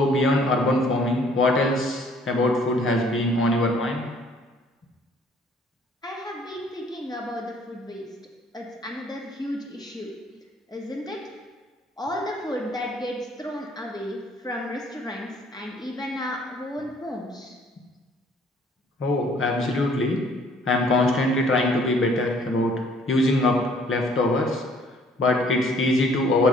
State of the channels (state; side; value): normal; both; correlation 0.59